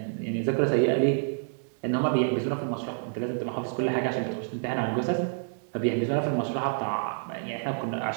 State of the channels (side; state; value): left; silent; digital silence